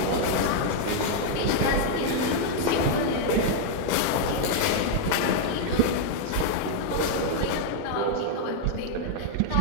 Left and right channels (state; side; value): different; both; correlation -0.01